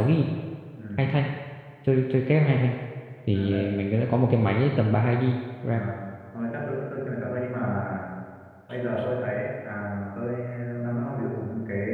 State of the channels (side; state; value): both; identical; correlation 1.00